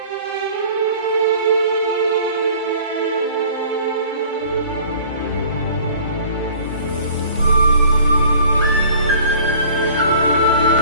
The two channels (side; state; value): both; inverted; correlation -0.50